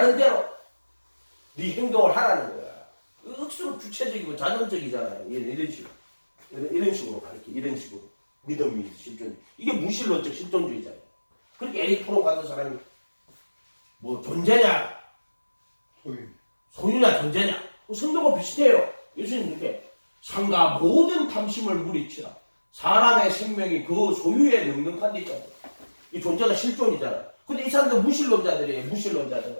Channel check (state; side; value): inverted; both; correlation -1.00